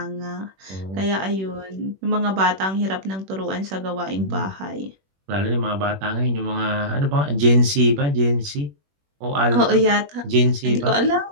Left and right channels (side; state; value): left; late; 21 ms